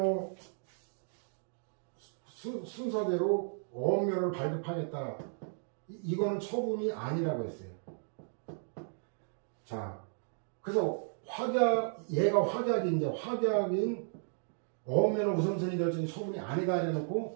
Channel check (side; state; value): left; silent; digital silence